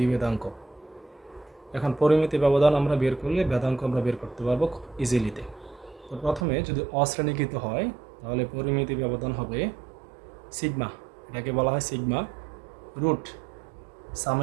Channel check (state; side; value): drops out; left; at 6.5 s